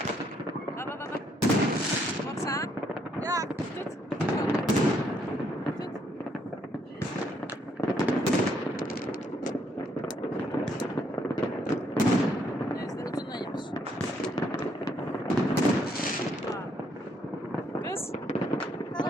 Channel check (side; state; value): both; normal; correlation 0.71